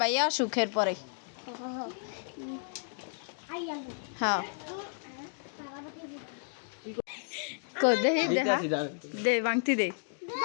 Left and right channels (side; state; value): right; silent; digital silence